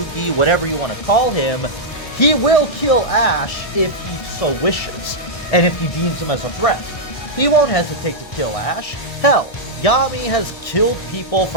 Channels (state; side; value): late; right; 1.6 ms